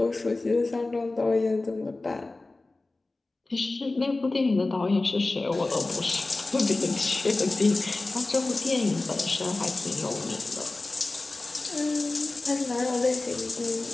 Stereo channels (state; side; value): quieter; right; 3.2 dB